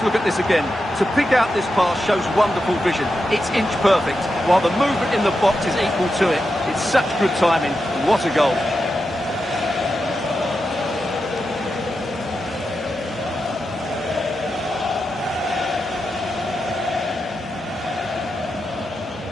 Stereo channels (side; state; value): both; normal; correlation 0.88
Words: look at this again. To pick out this pass shows wonderful vision. It's inch perfect, while the movement in the box is equal to it. It's such good timing. What a goal.